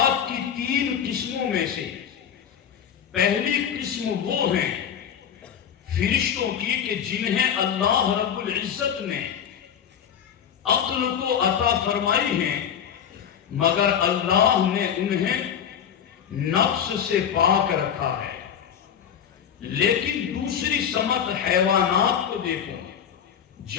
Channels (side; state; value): right; quieter; 8.6 dB